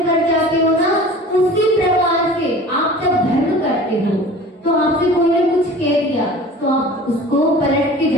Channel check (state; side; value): normal; both; correlation 0.42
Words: कर जाते हो ना, उसी प्रकार से आप जब धर्म करते हो तो आपसे कोई ने कुछ कह दिया तो आप उसको पलट के